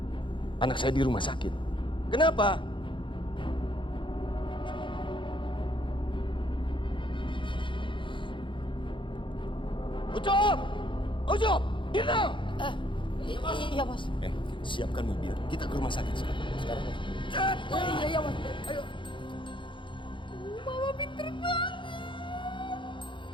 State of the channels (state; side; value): late; right; 0.24 ms